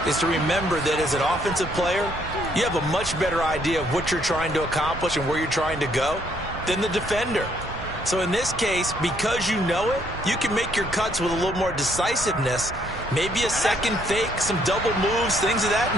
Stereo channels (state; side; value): noise; right; rumble, 14 dB below the sound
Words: is to remember that as an offensive player, you have a much better idea of what you're trying to accomplish and where you're trying to go than the defender. So in this case, because you know it, you can make your cuts with a little more decisiveness, maybe a second fake, some double moves, things of that